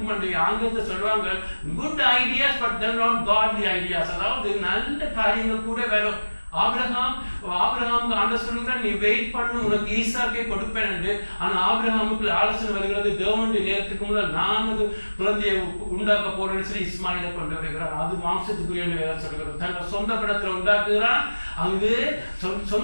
என்று ஆங்கிலத்தை சொல்லுவாங்க, good ideas but then not godly ideas. அதாவது நல்ல காரியங்கள் கூட வேணும். ஆபிரகாமுக்கு ஆண்டவர் சொல்லுகிறார், நீ வெயிட் பண்ணு, உனக்கு ஈசாக்கை கொடுப்பேன் என்று. ஆனால் ஆபிரகாமுக்கு ஆலோசனை வருகிறது, தேவனுடைய நேரத்துக்கு முதல் நான் ஒரு குழந்தையை உண்டாக்க போறேன்னு சொல்லி இஸ்மாயிலை கொண்டு வருகிறார். அது மாம்சத்துக்குரிய வேதம் சொல்கிறது. தன்னோட சொந்த படத்துல உண்டாக்குகிறான். அங்கு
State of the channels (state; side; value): inverted; both; correlation -1.00